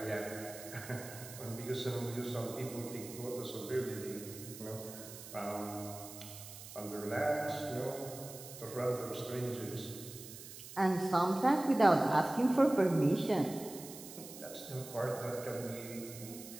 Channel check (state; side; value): noise; right; hiss, 13 dB below the sound